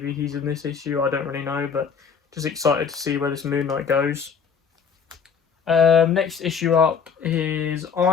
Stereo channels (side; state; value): right; quieter; 6.3 dB